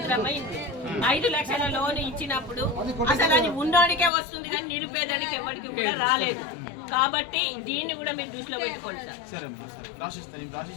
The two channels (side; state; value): right; drops out; at 4.1 s